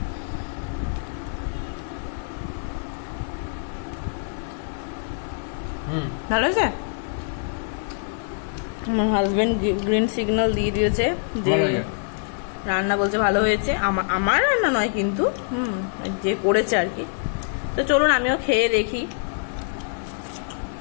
ভালো হয়েছে। আমার হাজবেন্ড গ্রিন সিগন্যাল দিয়ে দিয়েছে যে রান্না, বলছে ভালো হয়েছে। আমার রান্না নয় কিন্তু, যে করেছে আর কি। তো চলুন আমিও খেয়ে দেখি।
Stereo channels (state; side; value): silent; right; 56 dB below the other